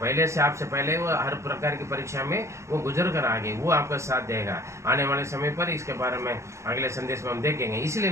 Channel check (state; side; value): late; left; 0.14 ms